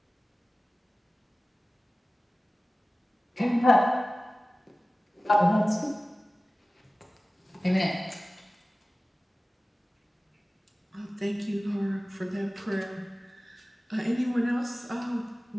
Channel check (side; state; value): both; normal; correlation 0.97